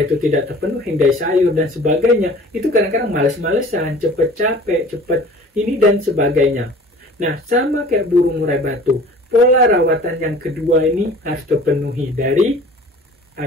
itu tidak terpenuhi, dari sayur dan sebagainya, itu kadang-kadang males-malesan, cepet capek, cepet ini dan sebagainya. Nah, sama kayak burung murai batu, pola rawatan yang kedua ini harus terpenuhi dari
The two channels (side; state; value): both; normal; correlation 0.46